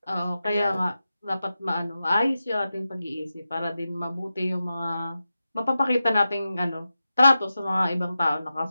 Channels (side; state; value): both; inverted; correlation -0.92